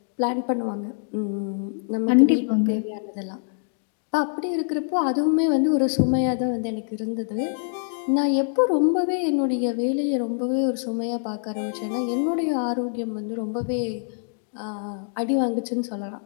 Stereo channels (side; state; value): right; silent; digital silence